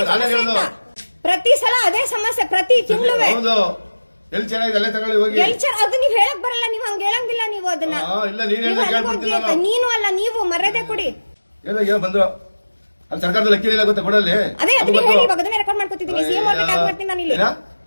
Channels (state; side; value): inverted; both; correlation -1.00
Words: ಸಮಸ್ಯೆ ಅಂತ ಪ್ರತಿ ಸಲ ಅದೇ ಸಮಸ್ಯೆ, ಪ್ರತಿ ತಿಂಗಳು ಅದು ನೀವ್ ಹೇಳಕ್ ಬರಲ್ಲ. ನೀವು ಹಂಗ ಹೇಳಂಗಿಲ್ಲ. ನೀವು ಅದನ್ನ ನೀನು ಅಲ್ಲ, ನೀವು ಮರ್ಯಾದೆ ಕೊಡಿ. ಸರ್ಕಾರದ ಲೆಕ್ಕ ಇಲ್ಲ ಗೊತ್ತಾ ಕೊಡಲ್ಲಿ? ಅದೇ ಅದಕ್ಕೆ ಹೇಳಿ. ಇವಾಗ ಅದನ್ನೇ ರೆಕಾರ್ಡ್ ಮಾಡ್ಕೊತಿದ್ದೀನಿ. ಸಿಎಂ ಅವ್ರಿಗೆ ಟ್ಯಾಗ್ ಮಾಡ್ತೀನಿ ನಾನು ಇಲ್ಲಿ.